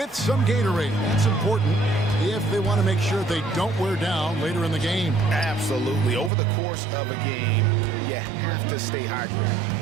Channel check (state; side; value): drops out; left; at 6.3 s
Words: some Gatorade. That's important if they want to make sure they don't wear down later in the game. Absolutely. Over the course of a game, you have to stay hydrated.